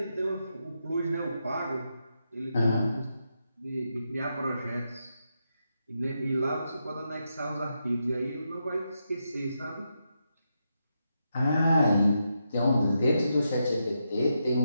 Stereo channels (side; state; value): both; inverted; correlation -0.84